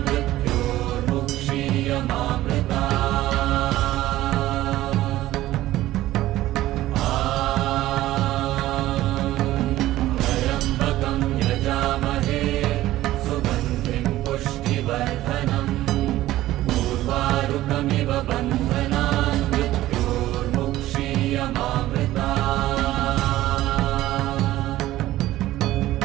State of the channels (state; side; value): quieter; left; 15.3 dB